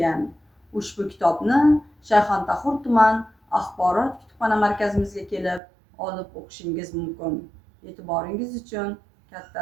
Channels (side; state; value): left; drops out; at 5.6 s